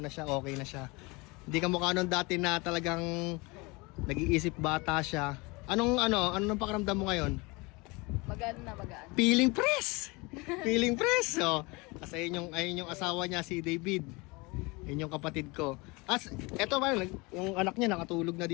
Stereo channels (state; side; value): quieter; right; 26.0 dB